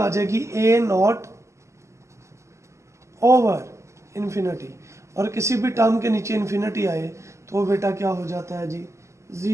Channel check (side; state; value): left; late; 0.14 ms